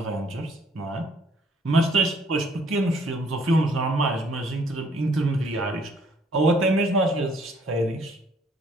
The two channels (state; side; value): normal; both; correlation 0.62